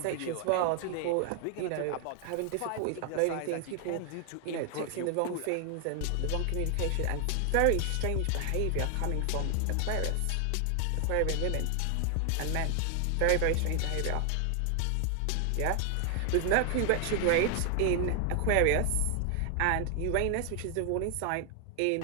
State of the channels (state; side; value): different; both; correlation 0.00